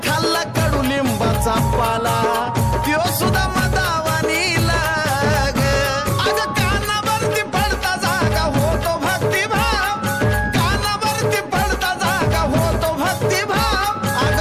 खाल्ला कडुलिंबाचा पाला त्यो सुद्धा मदावानी लाग अग कानावरती पडता जागा होतो भक्तिभाव कानावरती पडता जागा होतो भक्तिभाव अग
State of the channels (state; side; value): identical; both; correlation 1.00